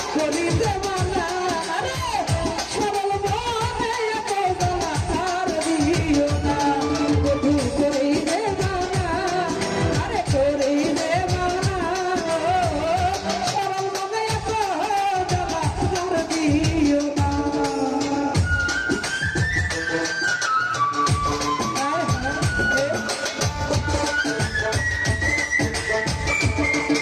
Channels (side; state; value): both; identical; correlation 1.00